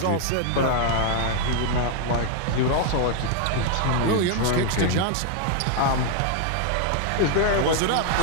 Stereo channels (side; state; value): both; different; correlation 0.00